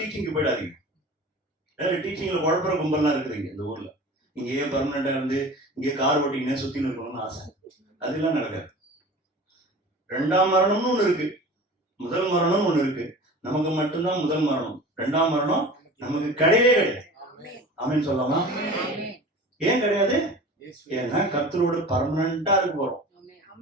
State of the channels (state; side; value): normal; both; correlation 0.38